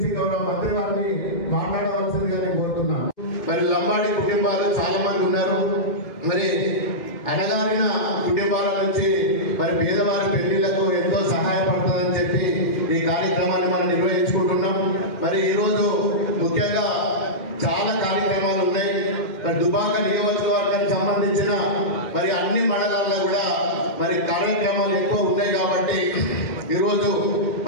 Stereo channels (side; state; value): right; late; 2.1 ms